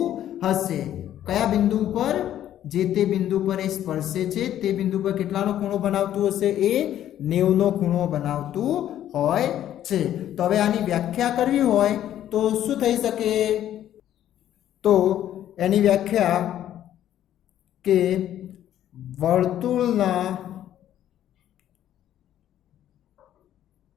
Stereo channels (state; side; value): quieter; right; 11.6 dB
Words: હશે. કયા બિંદુ પર, જે તે બિંદુ પર એ સ્પર્શે છે તે બિંદુ પર કેટલાનો ખૂણો બનાવતું હશે, એ 90નો ખૂણો બનાવતું હોય છે. તો હવે આની વ્યાખ્યા કરવી હોય તો શું થઈ શકે, તો એની વ્યાખ્યા કે વર્તુળના